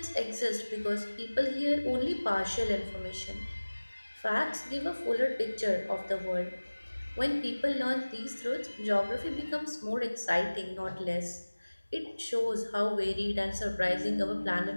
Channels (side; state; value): both; inverted; correlation -1.00